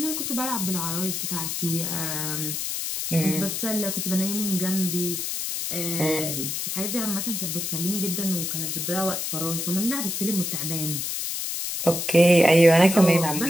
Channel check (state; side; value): noise; left; hiss, 3 dB below the sound